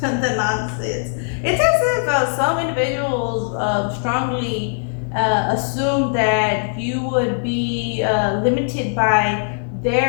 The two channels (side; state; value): right; silent; digital silence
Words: nonsense. It's as if some individuals strongly assume that you would be limited by